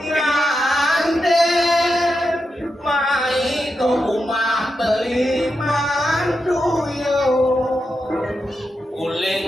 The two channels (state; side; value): normal; both; correlation 0.87